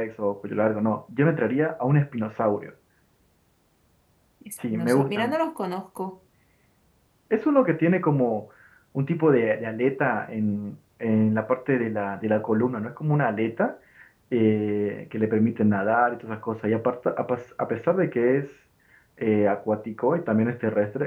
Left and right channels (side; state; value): both; identical; correlation 1.00